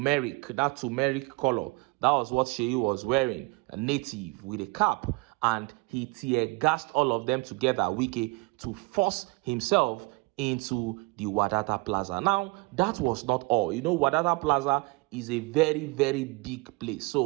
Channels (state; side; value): quieter; left; 26.3 dB